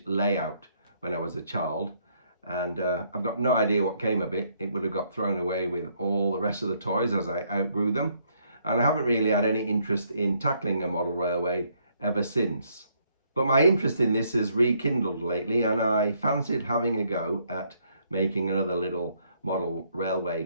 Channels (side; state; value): both; inverted; correlation -0.70